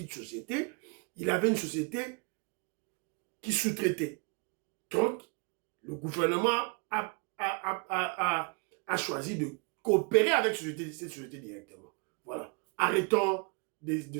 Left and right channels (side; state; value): left; quieter; 33.2 dB